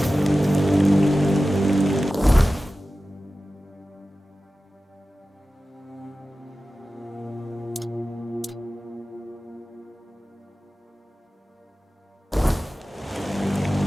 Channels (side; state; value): both; normal; correlation 0.95